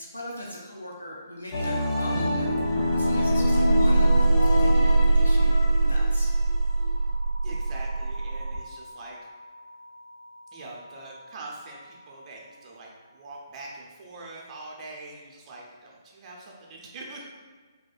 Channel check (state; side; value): inverted; both; correlation -0.91